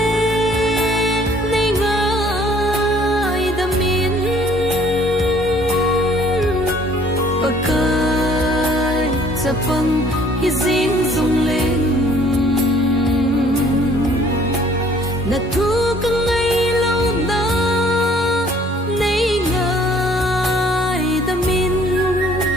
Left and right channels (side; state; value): both; normal; correlation 0.58